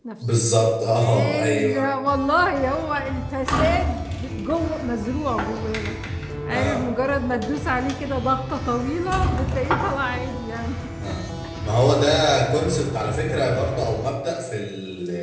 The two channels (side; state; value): both; identical; correlation 1.00